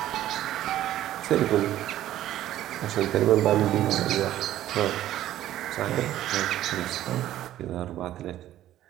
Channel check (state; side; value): quieter; left; 13.2 dB